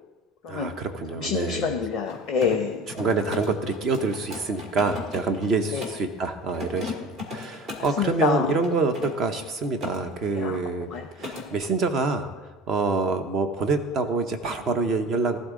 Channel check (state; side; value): normal; both; correlation 0.39